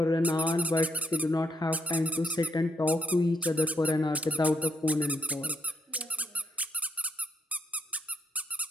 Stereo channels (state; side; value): normal; both; correlation 0.76